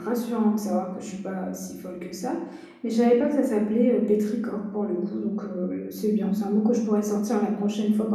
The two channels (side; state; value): both; identical; correlation 1.00